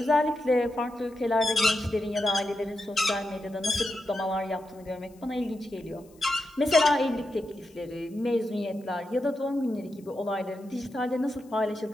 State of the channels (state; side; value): noise; left; hiss, 29 dB below the sound